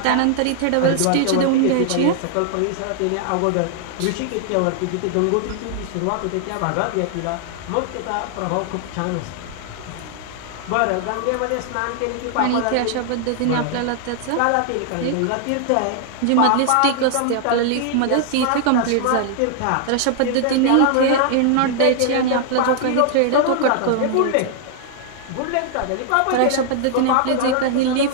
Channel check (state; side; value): different; both; correlation -0.01